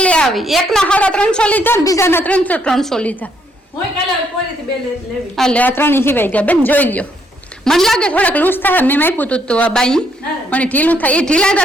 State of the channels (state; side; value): normal; both; correlation 0.72